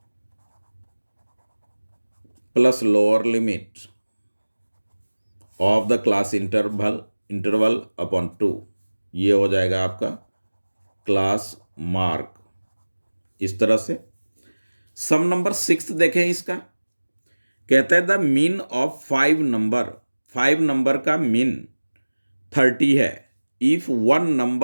plus lower limit of the class interval upon 2, ये हो जाएगा आपका क्लास मार्क। इस तरह से सम नंबर 6 देखें इसका, कहता है द मीन ऑफ 5 नंबर का मीन 30 है। If one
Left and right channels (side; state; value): both; inverted; correlation -1.00